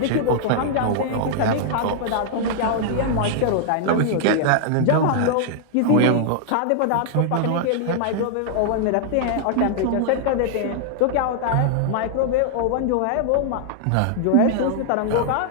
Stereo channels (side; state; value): both; different; correlation -0.01